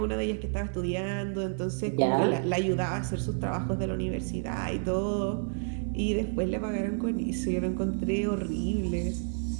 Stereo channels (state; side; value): silent; left; digital silence